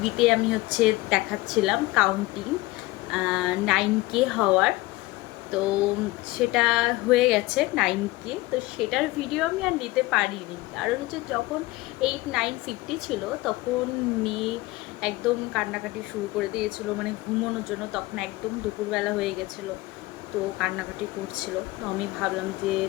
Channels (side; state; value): right; quieter; 20.0 dB